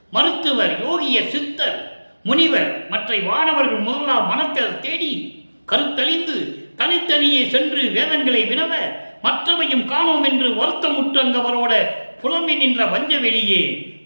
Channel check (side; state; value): both; inverted; correlation -1.00